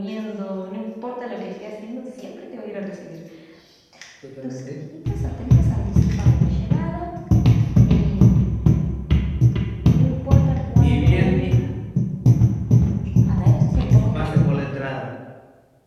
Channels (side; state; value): both; identical; correlation 1.00